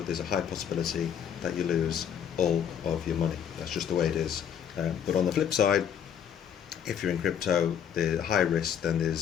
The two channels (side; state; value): right; quieter; 8.5 dB